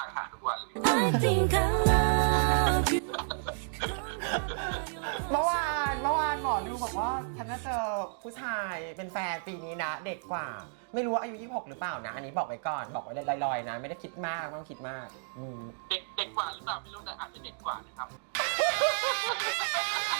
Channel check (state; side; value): silent; left; digital silence